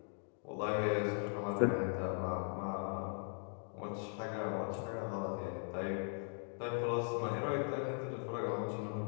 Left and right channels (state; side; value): silent; right; 51 dB below the other